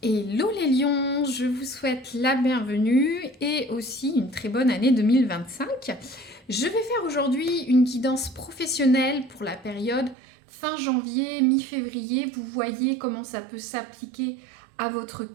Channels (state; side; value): drops out; left; at 10.2 s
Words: Hello les lions, je vous souhaite la bienvenue et aussi une très bonne année 2025. Je vais faire aujourd'hui une guidance professionnelle pour la période fin janvier, mi-février. Vous voyez comment ça peut s'appliquer à votre